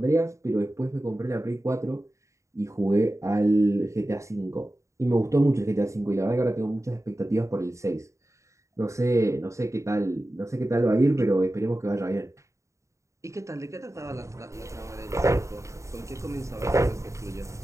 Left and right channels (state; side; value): late; left; 0.15 ms